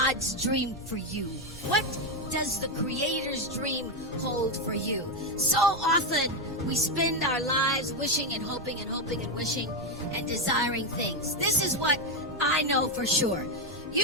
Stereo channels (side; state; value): right; noise; rumble, 19 dB below the sound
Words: dream for you? What does the Creator's dream hold for you? So often we spend our lives wishing and hoping and hoping and wishing and desiring things. This is what I know for sure. You